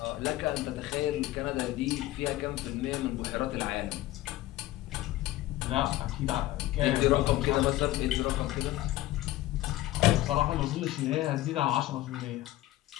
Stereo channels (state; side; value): quieter; right; 16.0 dB